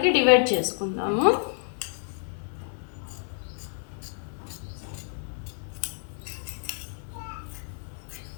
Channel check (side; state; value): right; silent; digital silence